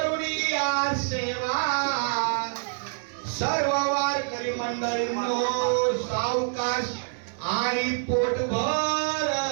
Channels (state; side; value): silent; left; 58 dB below the other